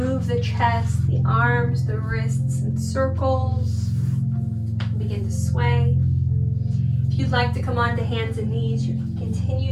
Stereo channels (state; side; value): identical; both; correlation 1.00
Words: the chest, the arms, the wrists in circles. Begin to sway. If you'd like to come onto hands and knees, you can continue